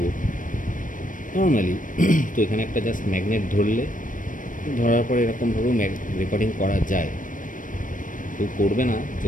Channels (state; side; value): late; right; 0.38 ms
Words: নর্মালি, তো এখানে একটা জাস্ট ম্যাগনেট ধরলে, ধরার পরে এরকমভাবেও রেকর্ডিং করা যায়। কেউ করবে না